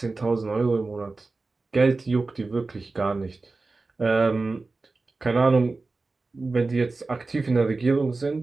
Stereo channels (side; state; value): left; quieter; 3.7 dB